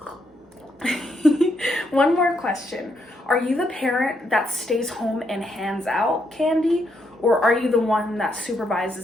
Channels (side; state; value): both; normal; correlation 0.77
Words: One more question. Are you the parent that stays home and hands out candy, or are you the one that